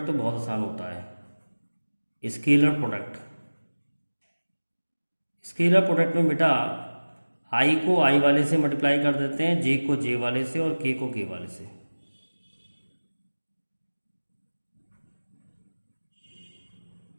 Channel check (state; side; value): inverted; both; correlation -1.00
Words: तो बहुत आसान होता है। स्केलर प्रोडक्ट में बेटा i को i वाले से मल्टीप्लाई कर देते हैं, j को j वाले से और k को k वाले से।